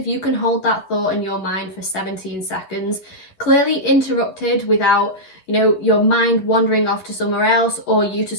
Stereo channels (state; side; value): late; right; 10 ms